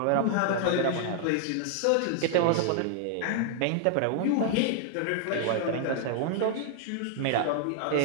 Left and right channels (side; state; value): both; different; correlation 0.00